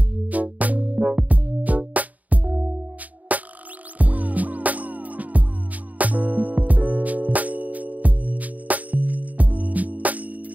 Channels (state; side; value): late; left; 0.074 ms